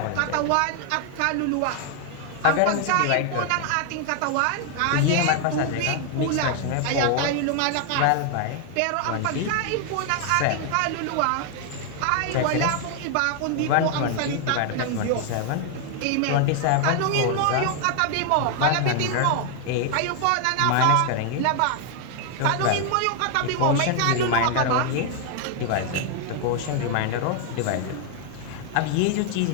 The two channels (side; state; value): both; different; correlation 0.00